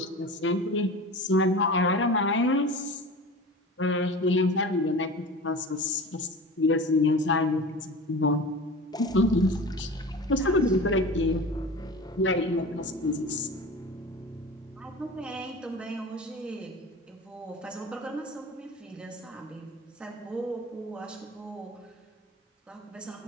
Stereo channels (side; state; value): both; normal; correlation 0.34